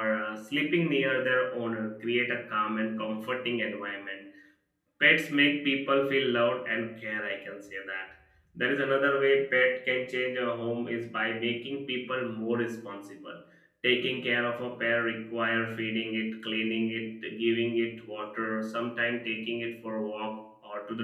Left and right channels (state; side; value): identical; both; correlation 1.00